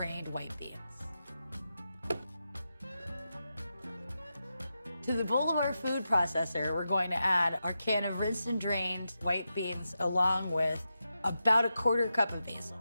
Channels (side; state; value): both; inverted; correlation -0.89